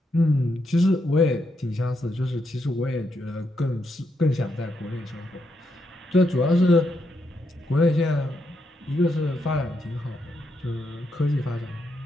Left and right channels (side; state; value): both; normal; correlation 0.81